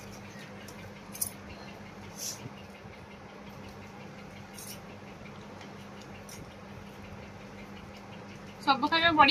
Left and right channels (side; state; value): both; identical; correlation 1.00